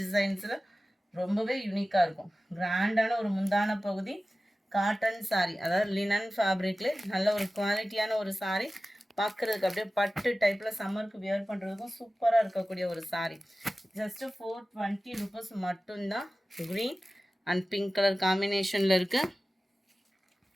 டிசைன்ஸில் ரொம்பவே யூனிக்காக இருக்கும். கிராண்டான ஒரு முந்தான பகுதி. காட்டன் சாரீ, அதாவது லினன் ஃபேப்ரிக்ல நல்ல ஒரு குவாலிட்டியான ஒரு சாரீ. பார்க்குறதுக்கு அப்படியே பட்டு டைப்பில் சம்மருக்கு வியர் பண்ணுறதுக்கும் சூப்பராக இருக்கக்கூடிய ஒரு சாரீ. ஜஸ்ட்டு 420 ருபீஸ் மட்டும்தான். க்ரீன் அண்ட் பிங்க் கலர் காம்பினேஷனில் இருக்குது.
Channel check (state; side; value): normal; both; correlation 0.96